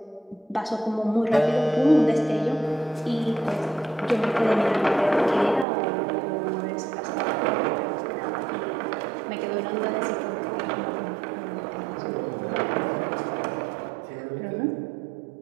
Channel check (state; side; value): drops out; left; at 5.7 s